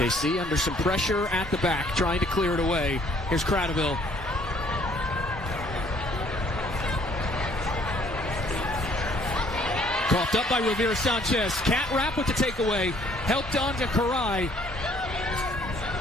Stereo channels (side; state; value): both; normal; correlation 0.61